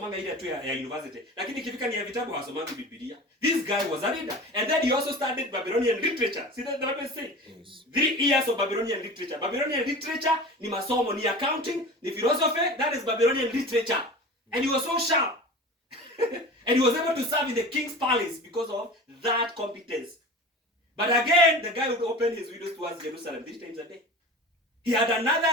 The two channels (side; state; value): both; normal; correlation 0.35